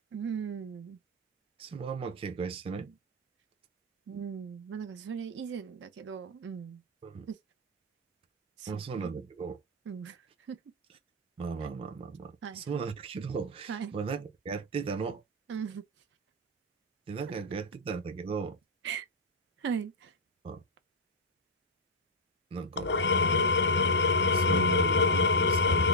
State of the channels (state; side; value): normal; both; correlation -0.08